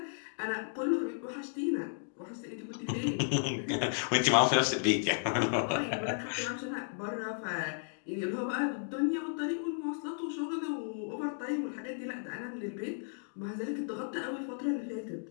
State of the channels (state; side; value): silent; right; digital silence